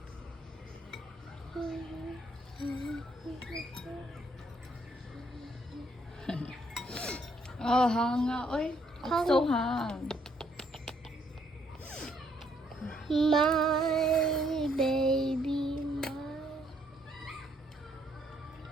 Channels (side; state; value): both; normal; correlation 0.70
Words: Oh, hanga, oy. I'm so hung. My baby,